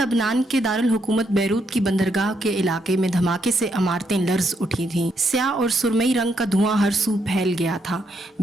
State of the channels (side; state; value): both; normal; correlation 0.77